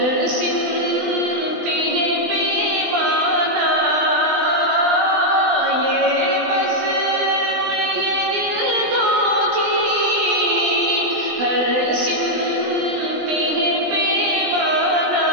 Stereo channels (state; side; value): late; left; 20 ms